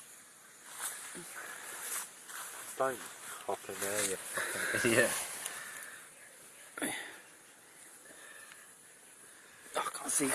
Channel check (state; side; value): identical; both; correlation 1.00